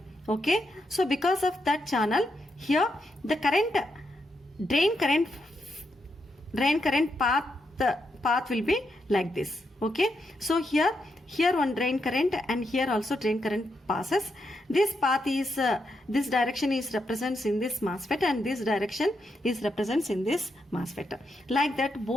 Okay. So because of that channel, here the current drain current path will be like this. Okay. So here one drain current and here also drain current passes. This path is this direction is represents in this MOSFET and this direction is represents in this MOSFET. Like that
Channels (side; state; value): both; normal; correlation 0.82